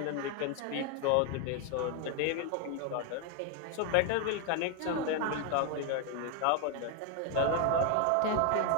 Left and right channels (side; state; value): both; different; correlation 0.01